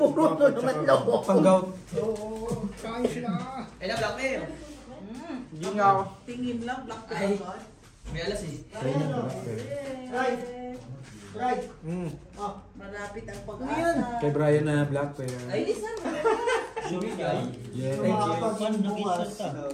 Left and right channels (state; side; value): identical; both; correlation 1.00